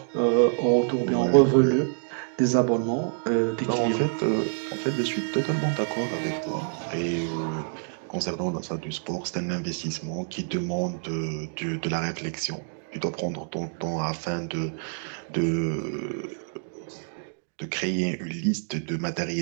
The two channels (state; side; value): silent; left; digital silence